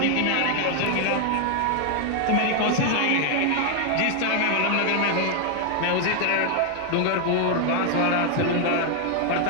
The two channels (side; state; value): both; different; correlation 0.00